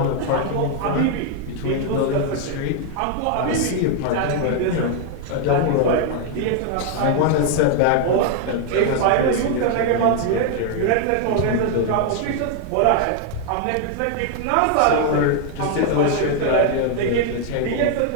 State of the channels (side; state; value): both; different; correlation 0.00